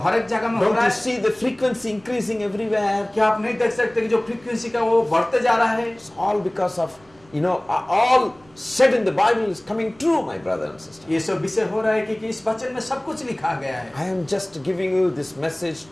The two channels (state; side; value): noise; right; rumble, 29 dB below the sound